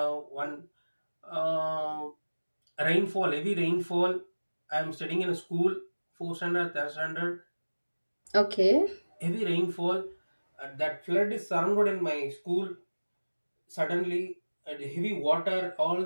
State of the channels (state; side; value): inverted; both; correlation -1.00